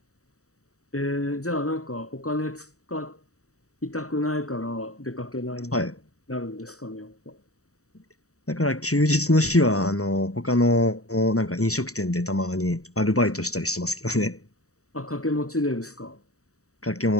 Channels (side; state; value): right; late; 0.65 ms